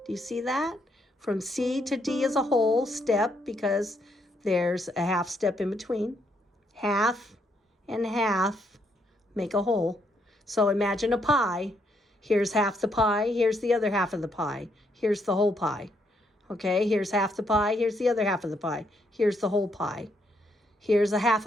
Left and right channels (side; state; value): both; normal; correlation 0.74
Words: Do you see that? From C to D is a whole step because there's a half step in between. Half and half make a whole. So imagine a pie. Here's half the pie. Here's the other half of the pie. Here's the whole pie. Okay, here's half the pie. Here's the other half of the pie. Here's the whole pie. Here's a half